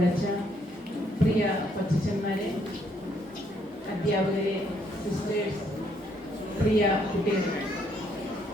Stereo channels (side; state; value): both; normal; correlation 0.70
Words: പ്രിയ കൊച്ചന്മാരെ, അധ്യാപകരെ, സിസ്റ്റേഴ്സ്, പ്രിയ കുട്ടികൾ,